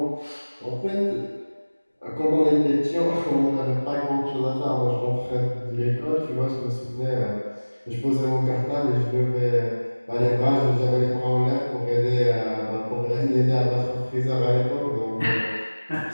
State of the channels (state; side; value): inverted; both; correlation -1.00